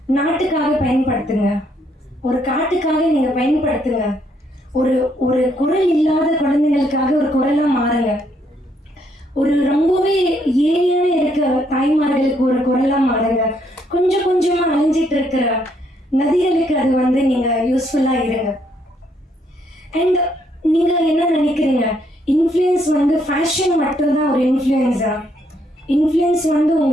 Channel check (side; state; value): both; normal; correlation 0.71